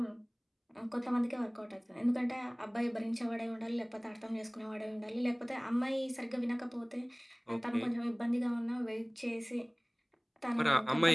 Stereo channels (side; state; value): both; identical; correlation 1.00